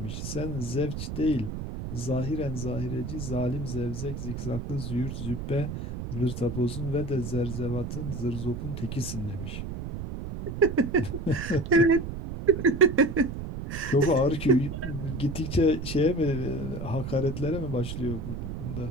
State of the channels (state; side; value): noise; right; rumble, 6 dB below the sound